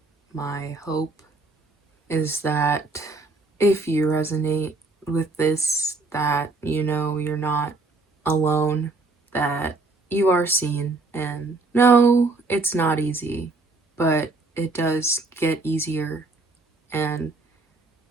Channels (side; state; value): left; quieter; 3.3 dB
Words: my hope, is that if you resonate with this, that you know you're not alone, that you are seen. And no, it's not easy, but it does get easier, and